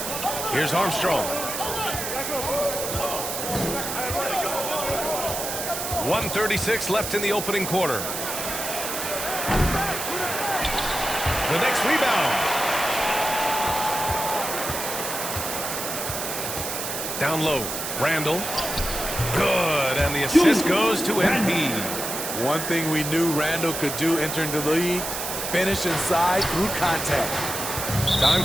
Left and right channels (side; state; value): right; noise; hiss, 4 dB below the sound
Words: Here's Armstrong. 1:36 left in the opening quarter. The next rebound. Down low. Randall. Good. And the assist goes to MP. One thing we knew Randall could do entering the league, finish inside through contact. Time